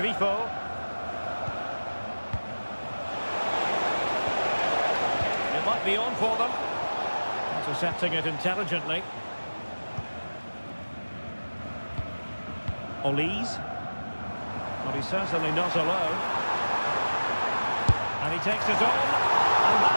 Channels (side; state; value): both; inverted; correlation -1.00